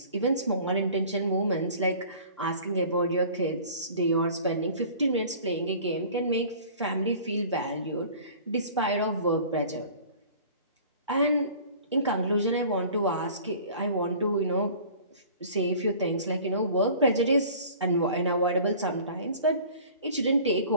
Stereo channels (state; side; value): inverted; both; correlation -0.46